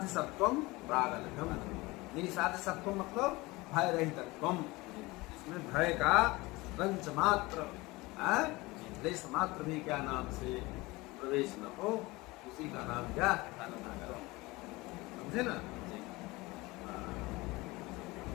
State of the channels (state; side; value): quieter; right; 22.0 dB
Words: सत्वम प्रागल्भ्यम। निसाध्य सत्वम मतलब भय रहितत्वम, इसमें भय का रंच मात्र, लेश मात्र भी क्या नाम से प्रवेश न हो, उसी का नाम क्या? समझे ना?